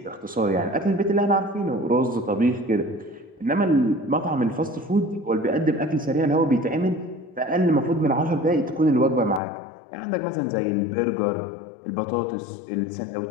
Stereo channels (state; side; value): drops out; right; at 9.4 s